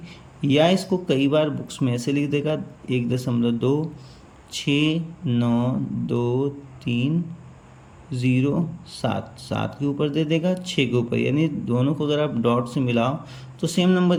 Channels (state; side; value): identical; both; correlation 1.00